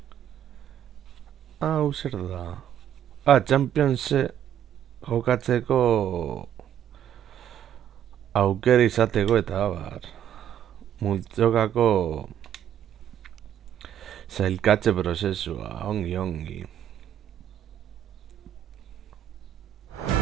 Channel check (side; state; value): left; quieter; 10.3 dB